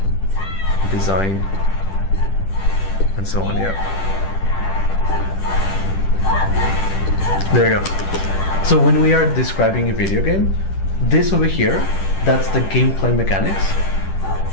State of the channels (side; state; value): right; late; 10 ms